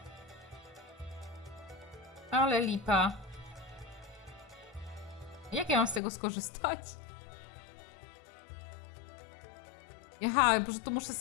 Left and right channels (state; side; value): drops out; right; at 6.0 s